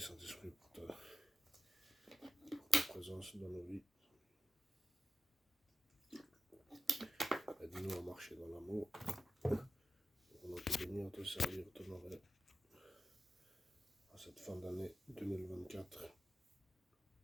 pour ta présence dans nos vies. Aide-nous à marcher dans l'amour. On va te bénir, te servir, t'honorer. À cette fin d'année 2024.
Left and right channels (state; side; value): normal; both; correlation 0.92